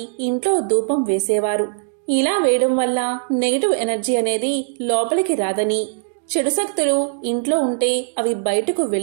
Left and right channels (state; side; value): silent; left; digital silence